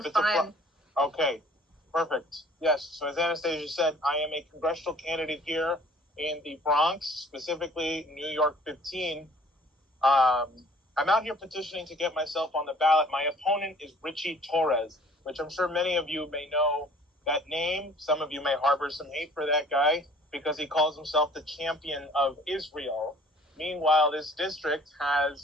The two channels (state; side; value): normal; both; correlation 0.53